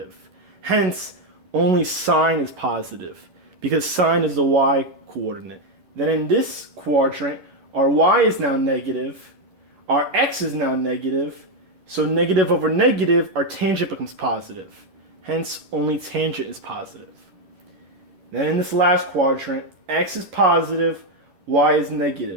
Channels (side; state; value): left; late; 11 ms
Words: Hence, only sine is positive, because sine is the y coordinate. Then in this quadrant, our y is now negative, our x is now negative, so negative over negative, our tangent becomes positive. Hence, only tangent is positive. Then in this last quadrant, x is positive, y is